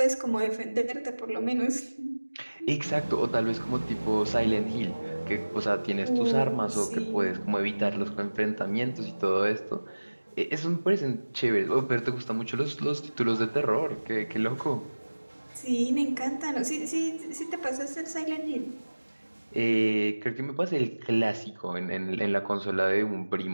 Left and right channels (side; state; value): both; inverted; correlation -1.00